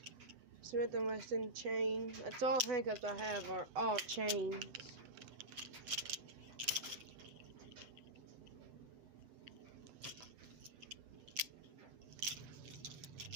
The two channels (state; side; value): late; left; 8.0 ms